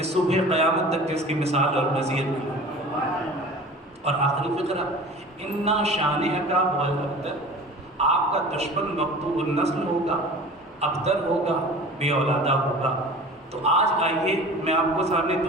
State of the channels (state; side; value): normal; both; correlation 0.40